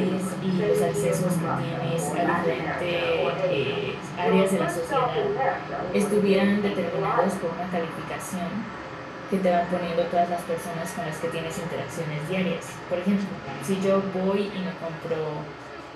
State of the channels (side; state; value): both; identical; correlation 1.00